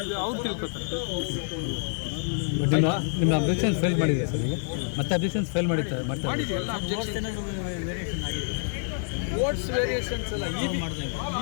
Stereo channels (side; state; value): right; silent; 58 dB below the other